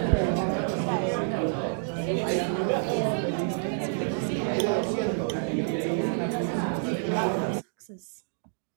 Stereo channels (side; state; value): left; silent; digital silence